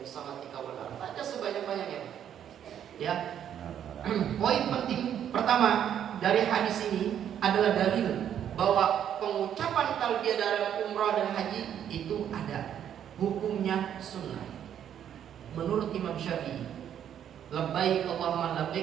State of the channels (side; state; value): left; quieter; 9.6 dB